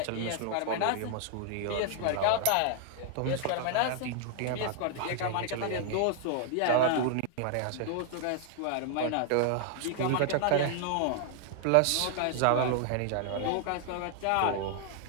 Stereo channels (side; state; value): both; different; correlation 0.00